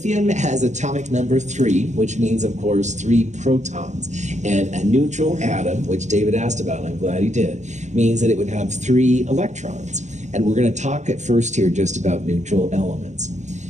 has atomic number 3, which means, of course, 3 protons. And a neutral atom, which David asked about, and I'm glad he did, means that it would have 3 electrons. And we're going to talk at first here just about neutral elements.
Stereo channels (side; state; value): left; late; 0.34 ms